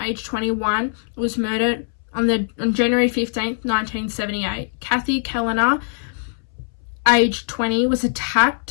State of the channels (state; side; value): silent; right; 64 dB below the other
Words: 21, was murdered on January 15th, 1978. Kathy Kellner, aged 20, was